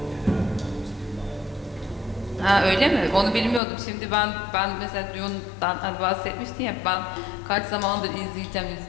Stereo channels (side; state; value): right; drops out; at 3.6 s